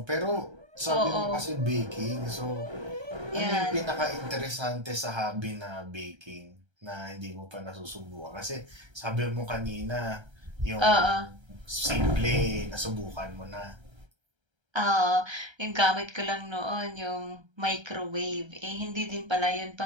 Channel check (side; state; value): left; late; 1.3 ms